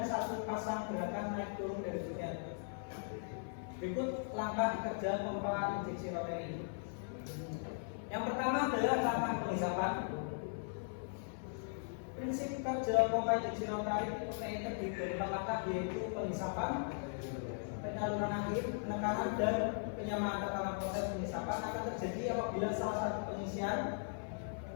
satu pasang gerakan naik turun dari sekian. Berikut langkah kerja pompa injeksi rotary. Yang pertama adalah langkah penghisapan. Prinsip kerja pompa injeksi rotary terdiri dari 4 langkah, yaitu penghisapan, penyaluran akhir, penekanan, dan penyamaan tekanan. Proses penghisapan akan terjadi apabila salah satu pengisian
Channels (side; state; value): right; silent; 52 dB below the other